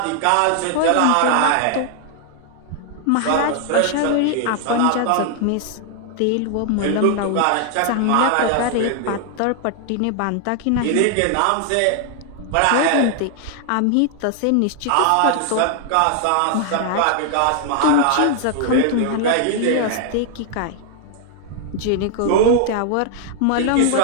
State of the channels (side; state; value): both; different; correlation 0.00